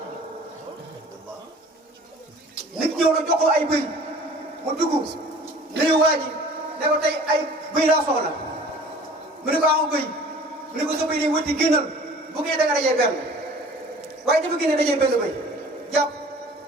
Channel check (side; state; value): both; normal; correlation 0.47